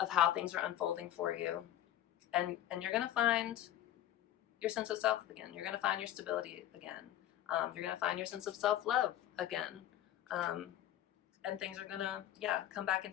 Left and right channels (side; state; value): right; quieter; 12.4 dB